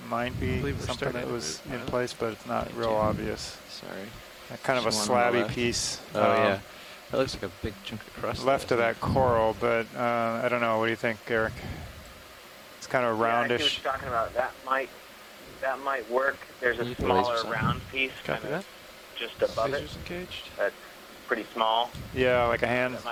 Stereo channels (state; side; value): identical; both; correlation 1.00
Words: might be something that was in place, but it's not real obvious. Sorry. Kind of a slabby piece. Oh yeah, that looks like a big chunk of crust. Left of that coral, but I don't know. What do you think, Eric? It's kind of roundish. Yeah, I see what you're talking about. That might work. There's a smaller round piece kind of just above it. That's pretty small. Yeah, like a hand,